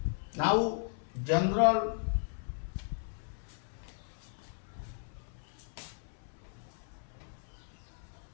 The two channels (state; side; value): silent; right; 54 dB below the other